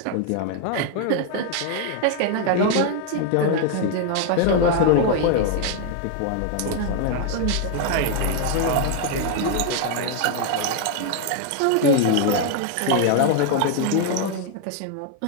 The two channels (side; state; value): both; different; correlation 0.00